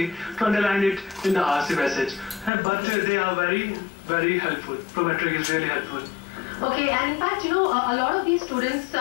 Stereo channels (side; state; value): right; drops out; at 2.5 s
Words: to underline it in the RC passage. But they are very, very helpful. Prometric is really helpful. Okay, and in fact, you know, a lot of these students,